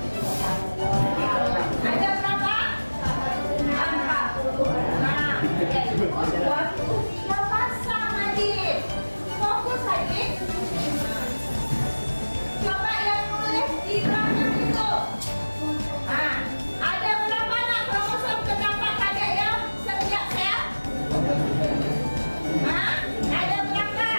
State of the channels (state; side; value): inverted; both; correlation -1.00